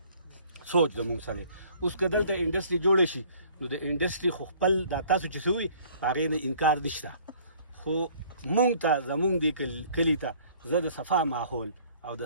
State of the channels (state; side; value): inverted; both; correlation -0.55